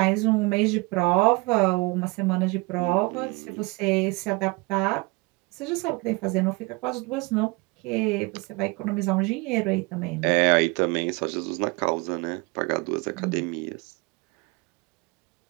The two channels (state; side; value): quieter; left; 26.2 dB